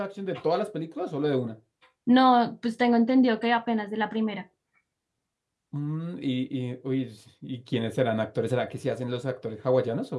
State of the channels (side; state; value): both; identical; correlation 1.00